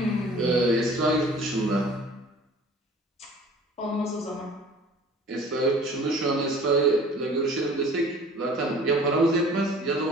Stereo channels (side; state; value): both; normal; correlation 0.47